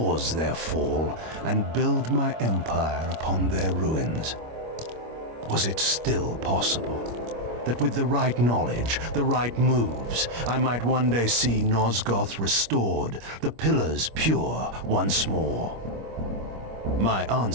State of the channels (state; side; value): late; left; 25 ms